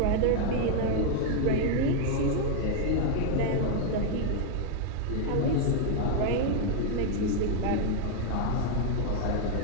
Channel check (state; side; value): different; both; correlation 0.00